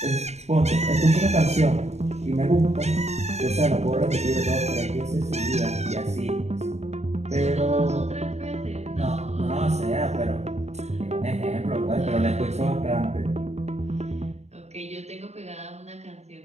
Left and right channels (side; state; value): left; late; 0.32 ms